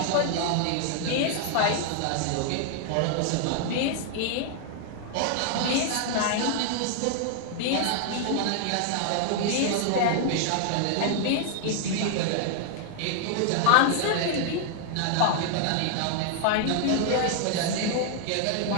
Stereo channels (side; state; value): both; different; correlation 0.00